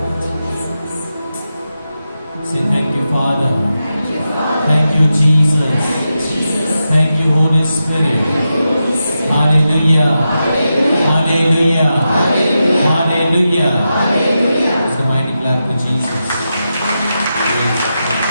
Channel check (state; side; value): inverted; both; correlation -0.89